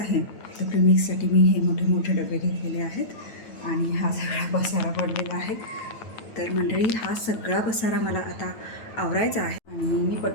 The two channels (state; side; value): late; right; 9.1 ms